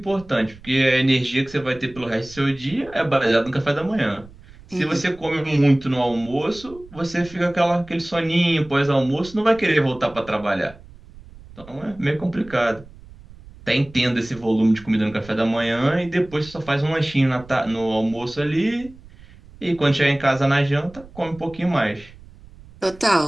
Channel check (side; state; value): right; noise; rumble, 21 dB below the sound